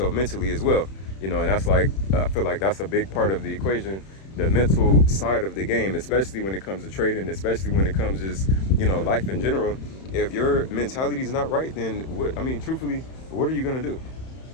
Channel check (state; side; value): late; right; 31 ms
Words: mentally as well. You know, and that's like, I feel like that's a big part of the equation, the mental side of the game, especially when it comes to trading, especially when it comes to just, you know, life in general. If your mentality is not right, then truthfully, what are you going to do?